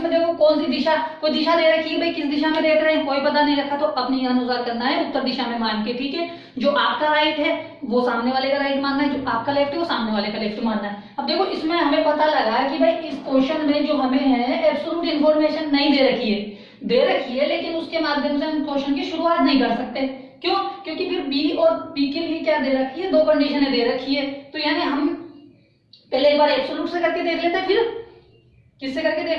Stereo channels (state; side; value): identical; both; correlation 1.00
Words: देखो कौन सी दिशा, कोई दिशा दे रखी है, भाई किस दिशा में देख रहे हैं कोई पता नहीं रखा, तो अपने अनुसार करना है, उत्तर दिशा में मान के, ठीक है। जो आपका राइट है वो सामने वाले का राइट मानना है, जो आपका लेफ्ट है वो सामने वाले का लेफ्ट मानना है। अब देखो इसमें हमें पता लगा कि भाई इस क्वेश्चन में जो हमें है एब्सोल्यूट इन्फॉर्मेशन नहीं दे रखी है, दे रखी है लेकिन उसके माध्यम से हम क्वेश्चन की शुरुआत नहीं कर सकते। क्यों, क्योंकि फिर बी और पी के लिए क्या दे रखी है, दो कंडीशनें दे रखी है। तो यानी हम पहले एक बार एब्सोल्यूट से करके देख लेते हैं, फिर किससे करके